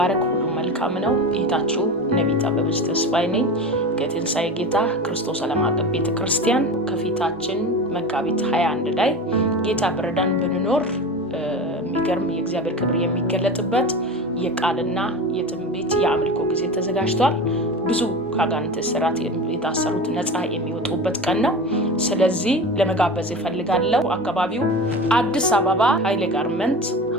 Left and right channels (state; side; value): normal; both; correlation 0.29